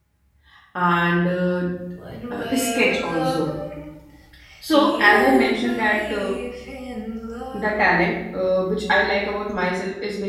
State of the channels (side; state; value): both; identical; correlation 1.00